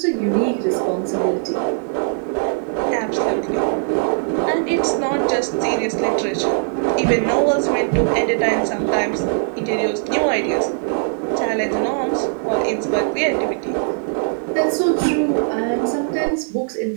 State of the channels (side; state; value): left; silent; digital silence